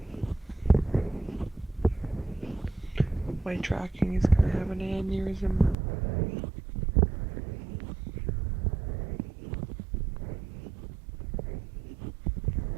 My tracking is gonna have an aneurysm.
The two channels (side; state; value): left; drops out; at 5.8 s